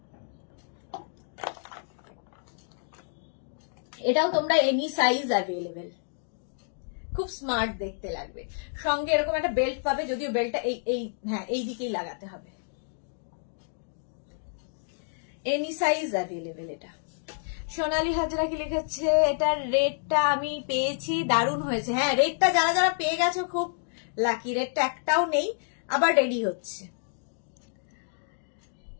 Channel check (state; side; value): silent; right; digital silence